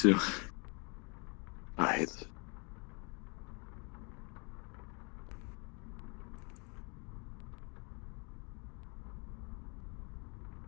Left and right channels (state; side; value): quieter; right; 33.2 dB